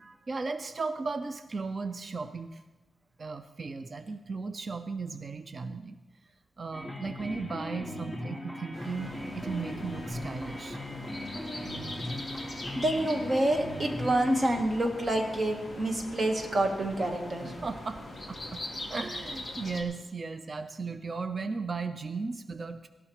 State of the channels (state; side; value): normal; both; correlation 0.89